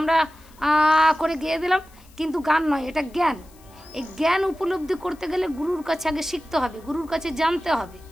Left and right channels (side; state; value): left; noise; hiss, 28 dB below the sound